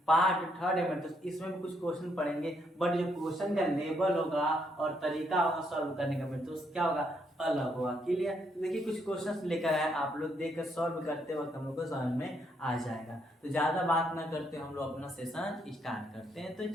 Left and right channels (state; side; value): normal; both; correlation 0.74